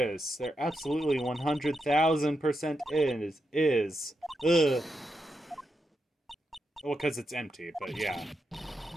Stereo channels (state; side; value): normal; both; correlation 0.85